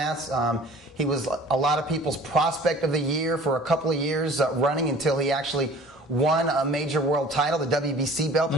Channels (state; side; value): normal; both; correlation 0.47